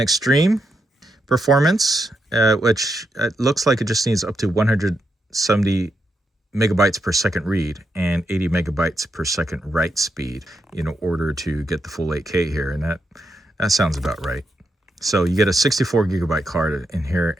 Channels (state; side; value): normal; both; correlation 0.83